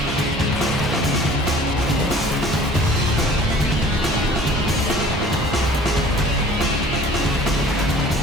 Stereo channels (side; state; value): both; normal; correlation 0.49